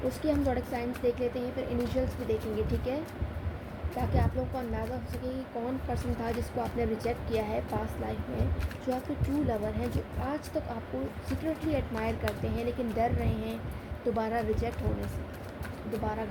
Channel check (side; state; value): both; identical; correlation 1.00